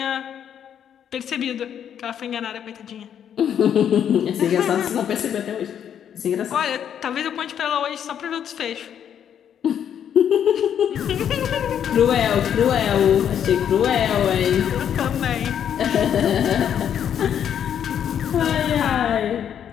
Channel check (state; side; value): quieter; right; 9.1 dB